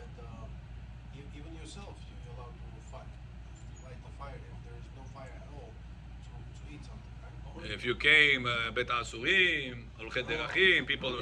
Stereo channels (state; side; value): identical; both; correlation 1.00